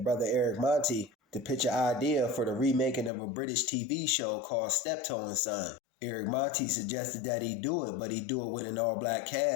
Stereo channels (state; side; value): drops out; right; at 3.1 s